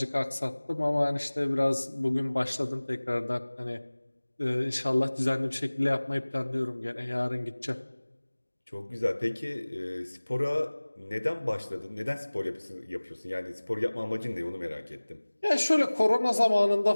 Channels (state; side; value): inverted; both; correlation -1.00